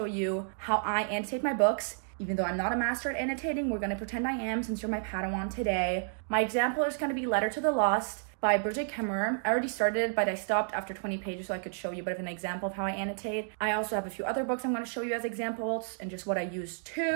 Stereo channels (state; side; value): silent; left; digital silence